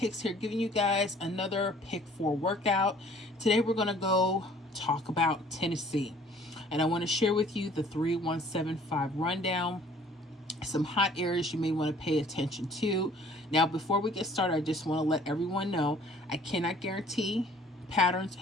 here, giving you guys another pick 4 workout. Today we're going to go talk about Tennessee, and I want to share with you the 3175 rundown, some hot areas you may want to pay attention to. Now before we get started, I just want to let everyone know I cannot guarantee patterns,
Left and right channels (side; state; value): both; normal; correlation 0.55